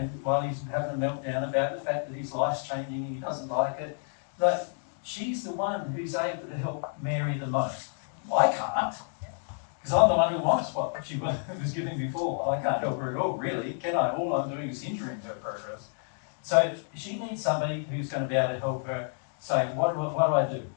while he's having a meltdown about the fact that his life's changing and he doesn't like it. Like, she's the one who's able to help Mary the most. I can't, because I'm the one who wants what she was giving before. I can't help her at all, really, can I? All I'm doing is hindering her progress. So she needs somebody who's going to be able to help her say, what do I do?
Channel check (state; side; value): silent; right; 57 dB below the other